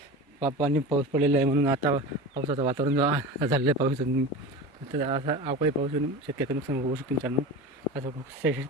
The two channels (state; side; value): normal; both; correlation 0.30